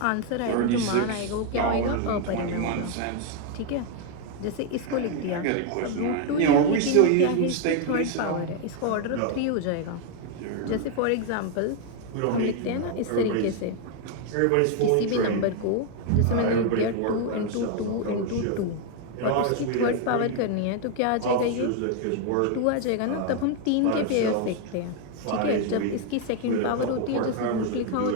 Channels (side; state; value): both; different; correlation 0.01